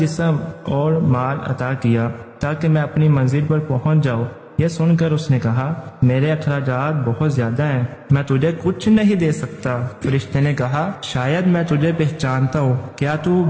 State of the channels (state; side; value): identical; both; correlation 1.00